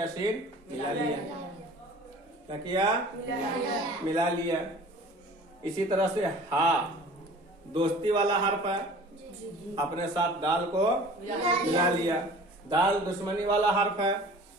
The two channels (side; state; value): both; normal; correlation 0.45